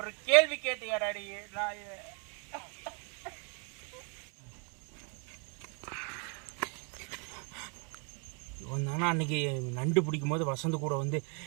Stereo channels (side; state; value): left; quieter; 36.8 dB